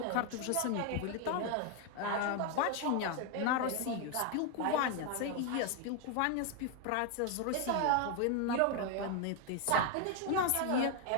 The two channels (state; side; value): different; both; correlation 0.01